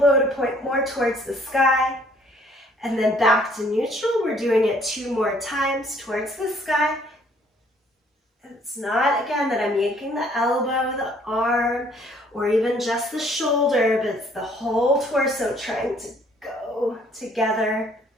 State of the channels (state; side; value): normal; both; correlation 0.61